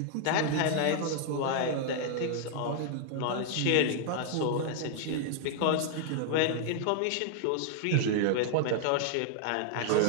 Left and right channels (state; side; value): different; both; correlation 0.00